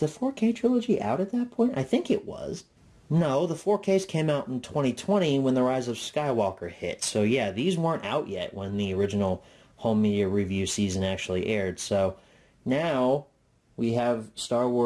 4K trilogy out at that point? I think it was. No, the 4Ks came out in 2020 when The Rise of Skywalker hit. So yeah, these weren't out yet when the original Home Media Review season actually aired. So now we have Star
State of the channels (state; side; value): identical; both; correlation 1.00